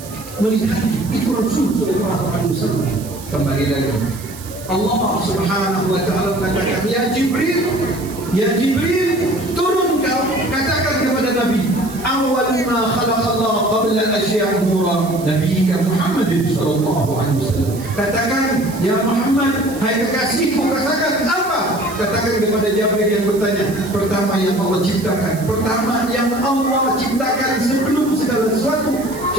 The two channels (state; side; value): noise; right; hiss, 16 dB below the sound